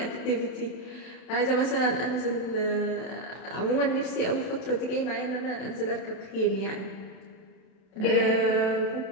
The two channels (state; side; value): late; right; 32 ms